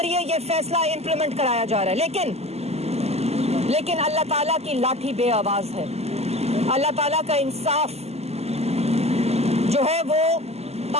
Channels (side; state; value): left; late; 0.30 ms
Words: ये फैसला इंप्लीमेंट कराया जा रहा है। लेकिन अल्लाह ताला की लाठी बेआवाज है। अल्लाह ताला का इंसाफ जो है वो